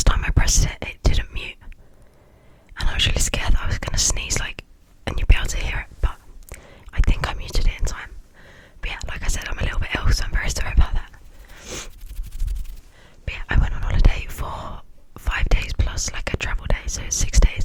time I pressed it, it didn't mute. And I was really scared that I was gonna sneeze like, and you'd be able to hear it, but I think I muted it in time. But yeah, like I said, I'm a little bit ill, so I'm very sorry about that. But yeah, I went on holiday for 5 days plus like a travel day, so 6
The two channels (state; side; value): identical; both; correlation 1.00